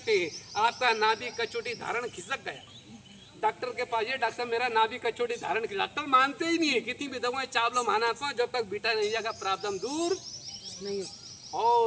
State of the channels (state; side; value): identical; both; correlation 1.00